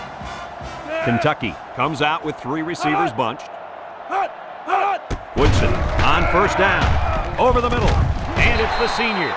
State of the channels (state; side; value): identical; both; correlation 1.00